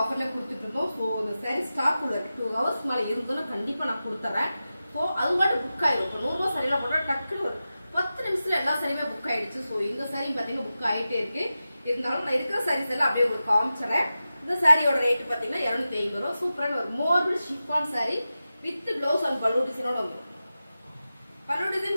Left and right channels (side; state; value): both; inverted; correlation -0.93